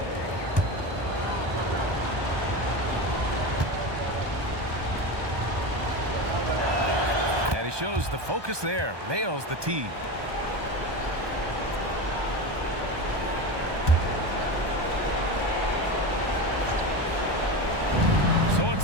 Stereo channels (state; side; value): late; left; 1.2 ms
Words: And he shows the focus there. Nails the tee. So